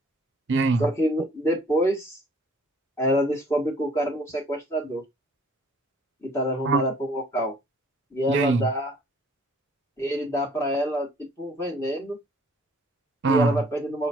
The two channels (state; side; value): normal; both; correlation 0.57